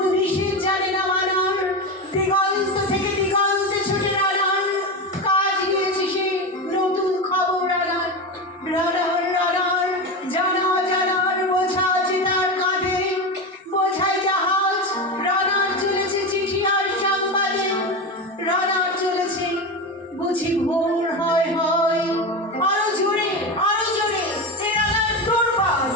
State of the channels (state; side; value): normal; both; correlation 0.20